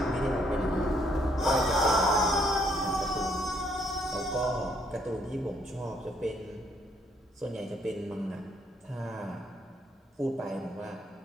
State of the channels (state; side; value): normal; both; correlation 0.69